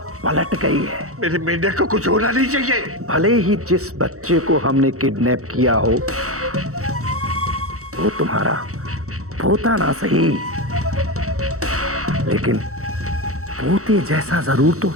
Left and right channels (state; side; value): late; left; 0.64 ms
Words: पलट गई है। मेरे मेंढक को कुछ होना नहीं चाहिए। भले ही जिस बच्चे को हमने किडनैप किया हो वो तुम्हारा पोता ना सही, लेकिन पोते जैसा जरूर तो है।